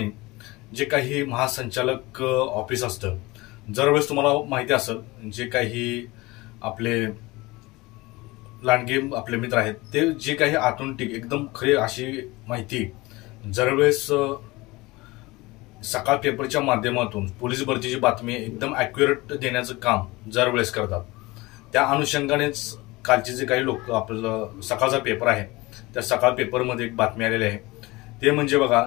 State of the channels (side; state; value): right; quieter; 21.9 dB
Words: जे काही महासंचालक ऑफिस असतं, दरवेळेस तुम्हाला माहिती असेल, जे काही आपले लांडगे आपले मित्र आहेत ते जे काही आतून एकदम खरी अशी माहिती दरवेळेस सकाळ पेपरच्या माध्यमातून पोलीस भरतीची बातमी एकदम ॲक्युरेट देण्याचं काम दरवेळेस करतात। त्या अनुषंगानेच कालचे जे काही लोक आपलं सकाळचा पेपर आहे त्या सकाळ पेपरमध्ये एक बातमी आलेली आहे, ते म्हणजे बघा,